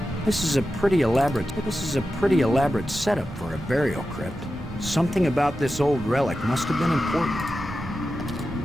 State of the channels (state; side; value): normal; both; correlation 0.92